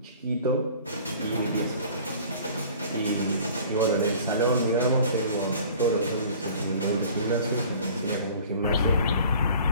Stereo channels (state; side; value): inverted; both; correlation -0.47